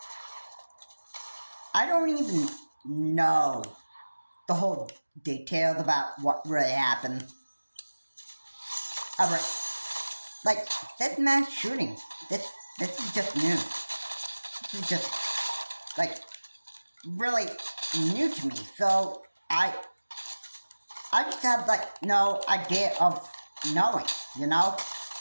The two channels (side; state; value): both; inverted; correlation -1.00